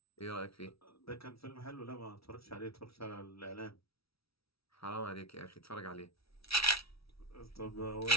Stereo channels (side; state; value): right; late; 0.76 ms